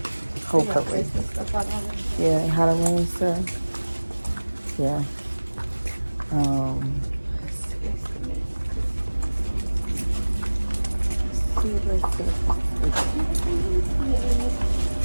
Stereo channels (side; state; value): both; inverted; correlation -1.00